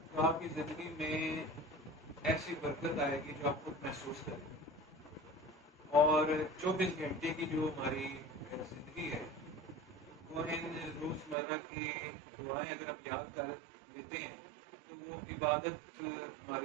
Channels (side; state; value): left; drops out; at 11.4 s